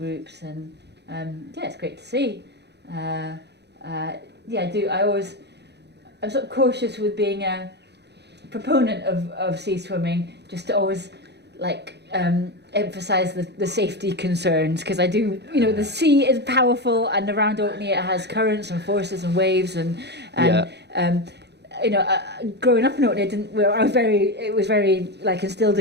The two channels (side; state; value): left; late; 0.49 ms